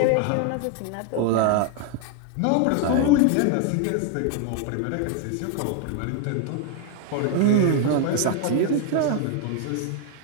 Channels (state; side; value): different; both; correlation 0.01